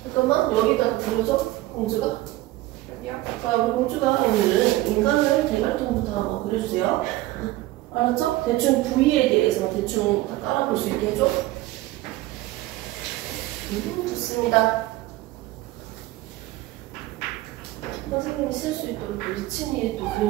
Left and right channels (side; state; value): left; quieter; 17.4 dB